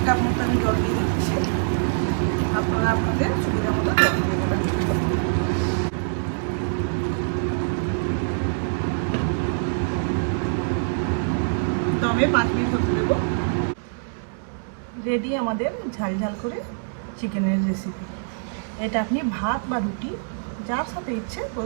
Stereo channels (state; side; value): silent; left; digital silence